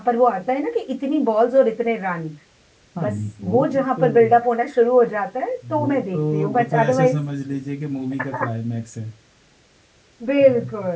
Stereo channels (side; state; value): both; identical; correlation 1.00